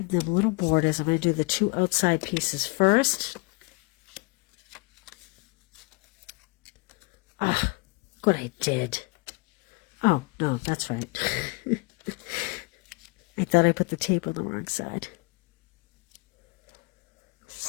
them little borders. I'm going to do the 2 outside pieces first. Ah, good, I did. Oh, no, that's right. I thought I put the tape on the wrong side.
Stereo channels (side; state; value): right; quieter; 28.5 dB